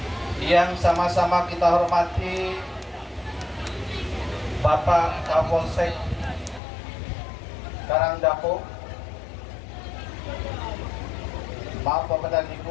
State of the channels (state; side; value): drops out; right; at 6.6 s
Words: Yang sama-sama kita hormati Bapak Kapolsek Karangdapo, maaf Bapak dan